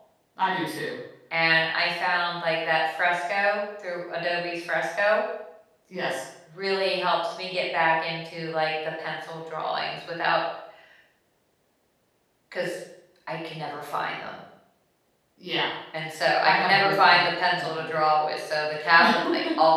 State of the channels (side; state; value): both; identical; correlation 1.00